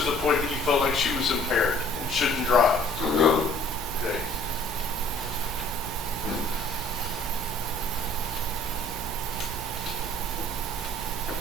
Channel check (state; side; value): normal; both; correlation 0.55